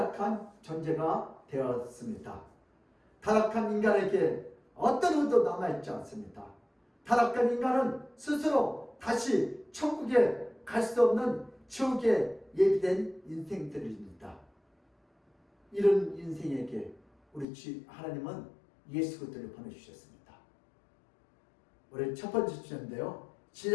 존재가 되었습니다. 타락한 인간에게 어떤 의도 남아있지 않습니다. 타락한 인간은 스스로 다시 천국에 갈 수 없는 지옥에 예비된 인생들입니다. 이런 인생에게 우리 하나님은 예수 그리스도를 보내주셨습니다. 우리 첫 번째 주제인데요.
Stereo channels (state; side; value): drops out; right; at 17.4 s